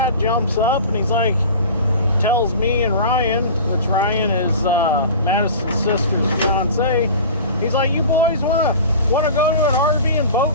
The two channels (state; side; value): inverted; both; correlation -0.38